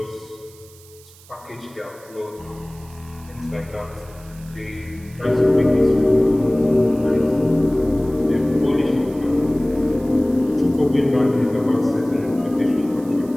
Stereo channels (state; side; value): noise; right; hiss, 24 dB below the sound